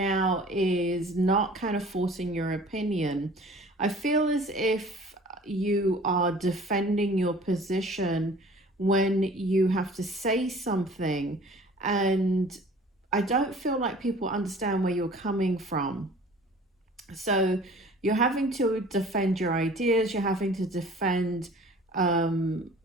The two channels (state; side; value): normal; both; correlation 0.48